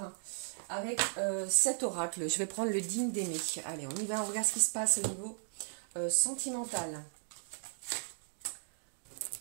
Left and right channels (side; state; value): left; silent; digital silence